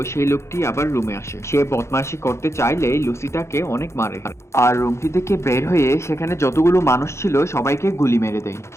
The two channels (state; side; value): late; right; 0.13 ms